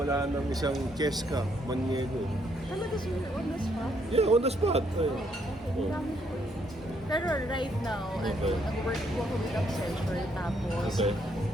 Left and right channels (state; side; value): normal; both; correlation 0.71